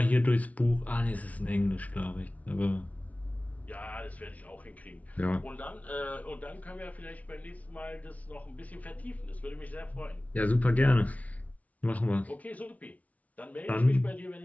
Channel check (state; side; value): late; right; 0.069 ms